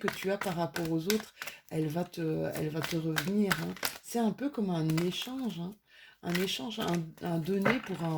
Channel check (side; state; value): both; identical; correlation 1.00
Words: tu as par rapport aux autres, elle va te revenir, hein. C'est un peu comme un échange, hein. Un échange, un donner pour un